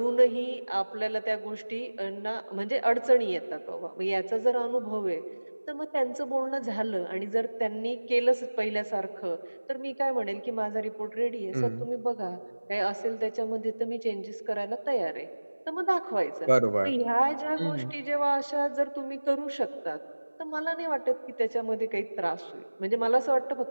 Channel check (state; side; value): inverted; both; correlation -1.00